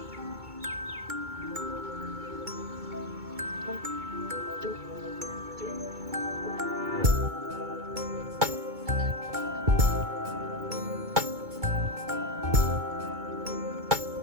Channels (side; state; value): left; late; 2.2 ms